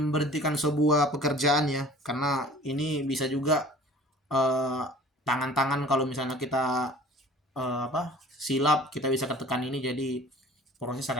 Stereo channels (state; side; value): normal; both; correlation 0.47